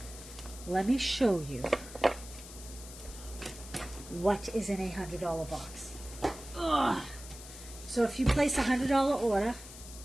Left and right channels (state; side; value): noise; left; hiss, 15 dB below the sound